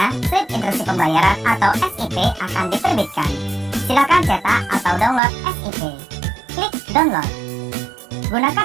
slip instruksi pembayaran atau SIP akan diterbitkan. Silakan cetak atau download SIP. Klik download.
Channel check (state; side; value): drops out; left; at 5.2 s